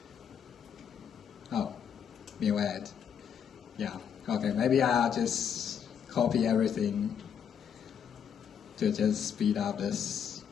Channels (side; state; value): right; quieter; 7.9 dB